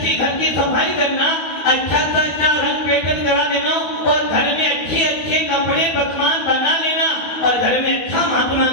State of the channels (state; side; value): late; right; 12 ms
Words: घर की सफाई करना, अच्छा से अच्छा रंग पेटन करा देना और घर में अच्छे अच्छे कपड़े पकवान बना लेना और घर में अच्छा महात्मा